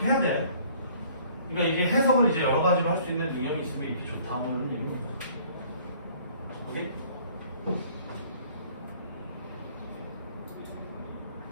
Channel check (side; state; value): both; inverted; correlation -0.56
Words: 해야 돼. 그러니까 이게 해석을 이제 여러 가지로 할 수 있는 능력이 있으면 이렇게 좋다 뭐 이런 얘기입니다. 오케이?